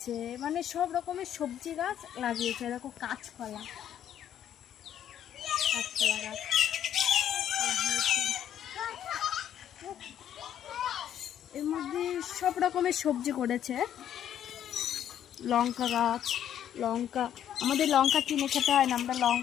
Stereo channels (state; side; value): quieter; right; 10.3 dB